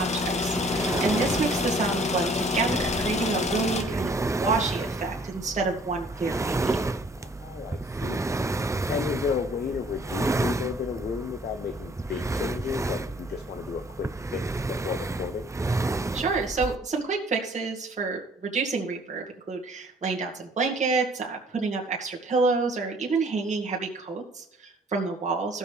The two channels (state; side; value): normal; both; correlation 0.57